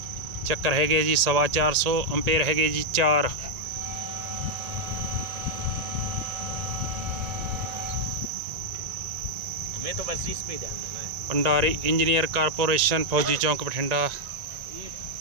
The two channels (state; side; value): late; left; 1.8 ms